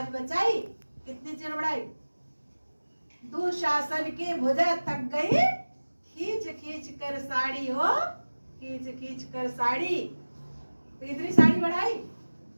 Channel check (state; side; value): inverted; both; correlation -1.00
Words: बचाई। कितनी चीर बढ़ाई? दुशासन के भुजा थक गई, खींच खींच कर साड़ी हो, खींच खींच कर साड़ी। तो इतनी साड़ी बढ़ाई।